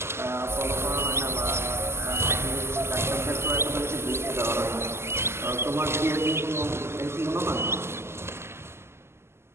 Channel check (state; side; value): late; left; 0.12 ms